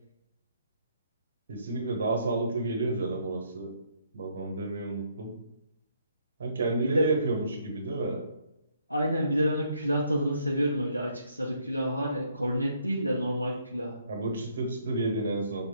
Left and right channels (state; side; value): inverted; both; correlation -0.70